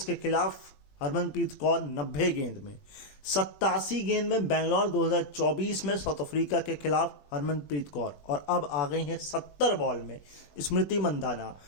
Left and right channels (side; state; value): right; late; 20 ms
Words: के खिलाफ हरमनप्रीत कौर 90 गेंद में। 87 गेंद में बेंगलोर 2024 में साउथ अफ्रीका के खिलाफ हरमनप्रीत कौर, और अब आ गई हैं 70 बॉल में स्मृति मंधाना